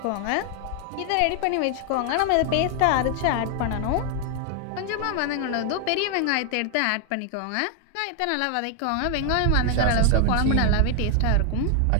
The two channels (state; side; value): different; both; correlation 0.00